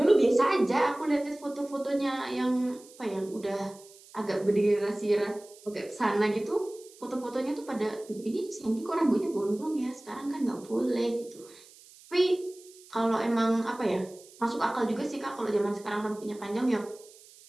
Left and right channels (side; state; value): right; noise; hiss, 23 dB below the sound